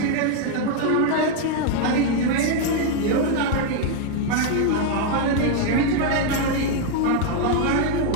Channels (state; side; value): different; both; correlation 0.01